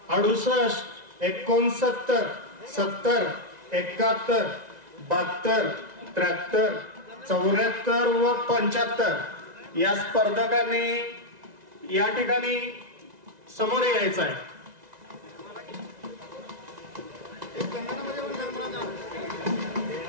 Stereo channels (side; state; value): left; late; 2.0 ms